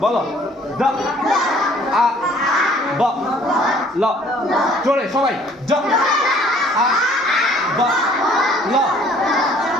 দ আ ব ল জোরে সবাই জ আ ব ল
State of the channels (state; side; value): normal; both; correlation 0.57